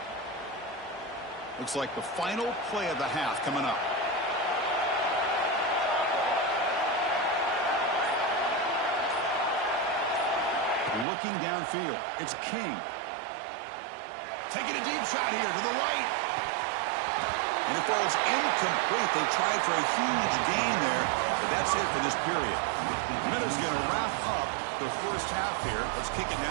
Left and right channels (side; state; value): left; drops out; at 11.1 s